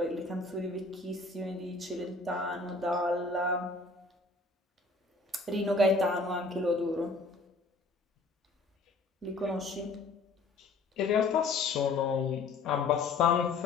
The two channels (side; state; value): right; quieter; 3.6 dB